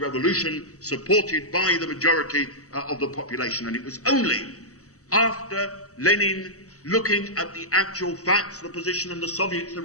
supported by the majority of the population, and it was only after Lenin, looking at the actual facts, the position in the Soviets, the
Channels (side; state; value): right; late; 0.65 ms